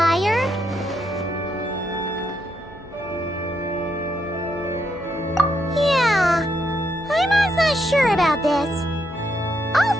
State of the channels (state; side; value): normal; both; correlation 0.78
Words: Yeah, I'm not sure about this.